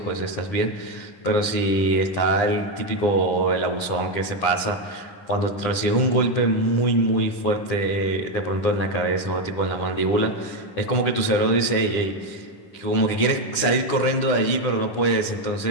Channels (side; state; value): right; late; 9.8 ms